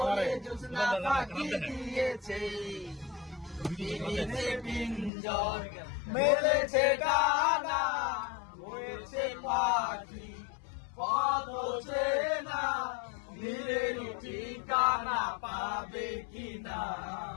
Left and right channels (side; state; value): right; drops out; at 5.1 s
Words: জ্যোৎস্না ফাঁকি দিয়েছে। পিঞ্জর মেলেছে ডানা, হয়েছে পাখি পথ চেনা, নীলের ঠিকানা পাবে কিনা